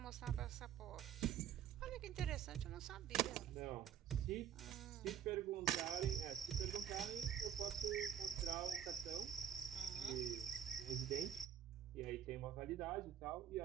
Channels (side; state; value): left; quieter; 9.5 dB